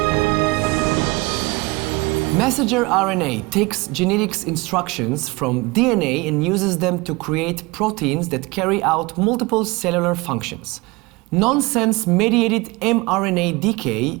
Messenger RNA takes genetics instructions from DNA and uses them to create proteins that carry out multiple cellular functions. Nonsense-mediated mRNA decay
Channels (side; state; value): left; quieter; 24.0 dB